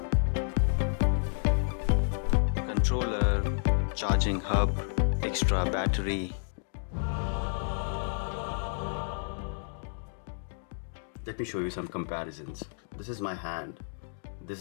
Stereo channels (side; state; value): right; silent; digital silence